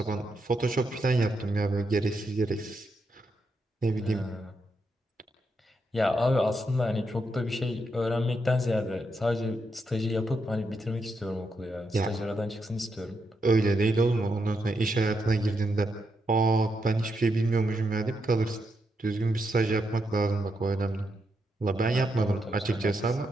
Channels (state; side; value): normal; both; correlation 0.82